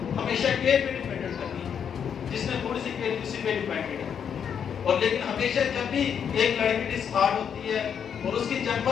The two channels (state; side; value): quieter; right; 7.8 dB